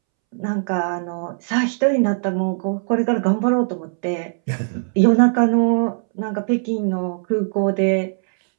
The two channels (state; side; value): silent; left; 66 dB below the other